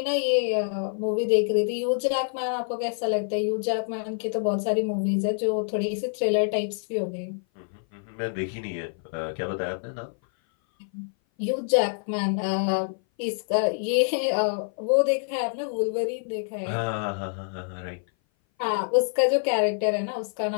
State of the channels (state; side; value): silent; right; 58 dB below the other